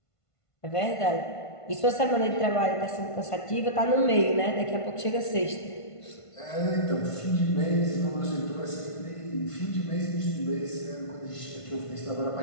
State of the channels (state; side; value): late; right; 1.5 ms